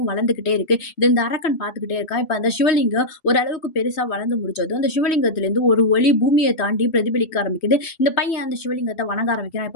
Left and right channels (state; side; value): late; right; 3.1 ms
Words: வளர்ந்துகிட்டே இருக்கு. இது இந்த அரக்கன் பார்த்துக்கிட்டே இருக்கான். இப்ப அந்த சிவலிங்கம் ஓரளவுக்கு பெருசா வளர்ந்து முடிச்சதும், அந்த சிவலிங்கத்திலிருந்து ஒரு ஒளி பூமிய தாண்டி பிரதிபலிக்க ஆரம்பிக்குது. இந்த பையன் அந்த சிவலிங்கத்த வணங்க ஆரம்பிக்கிறான்.